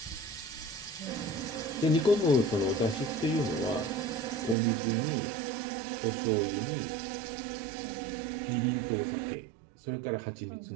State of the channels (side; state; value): left; drops out; at 4.5 s